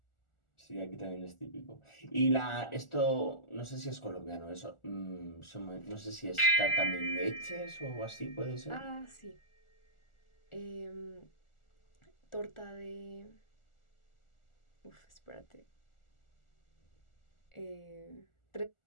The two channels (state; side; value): late; right; 1.4 ms